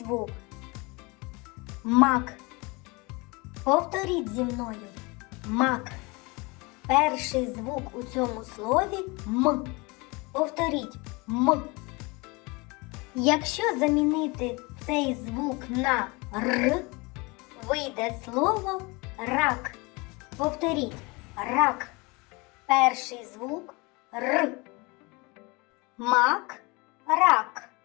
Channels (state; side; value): quieter; right; 26.5 dB